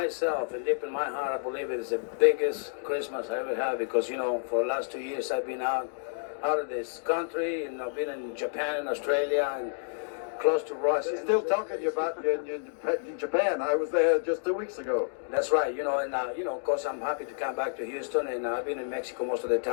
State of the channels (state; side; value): silent; right; digital silence